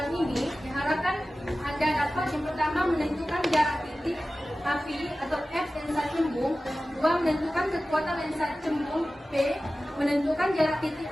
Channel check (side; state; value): both; normal; correlation 0.96